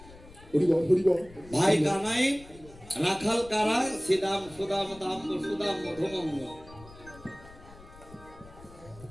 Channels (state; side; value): noise; left; rumble, 20 dB below the sound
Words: হরিবল ভাই কানাই রাখাল কারা শ্রীদাম সুদাম দাম্ব সুদাম মধুগঙ্গ